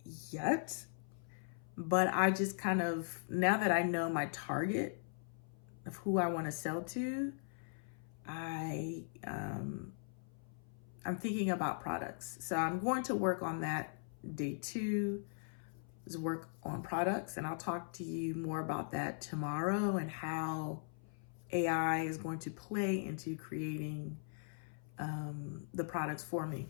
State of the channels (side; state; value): right; silent; 51 dB below the other